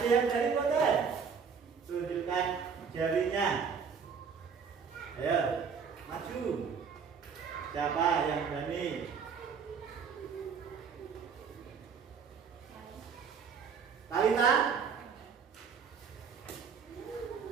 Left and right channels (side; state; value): left; quieter; 6.2 dB